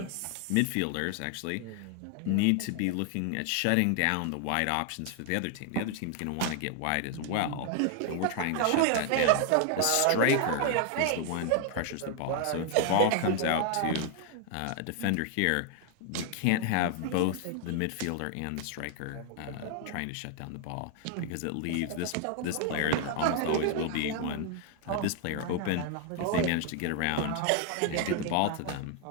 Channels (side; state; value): both; different; correlation 0.00